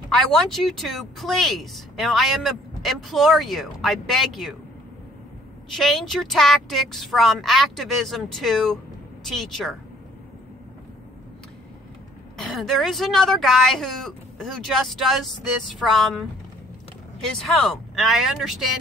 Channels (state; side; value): normal; both; correlation 0.59